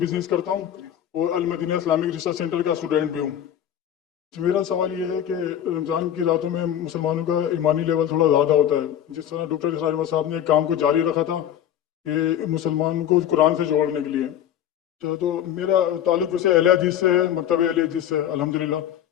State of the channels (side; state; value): right; quieter; 10.5 dB